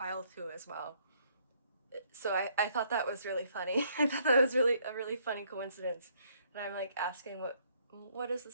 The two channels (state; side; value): inverted; both; correlation -0.67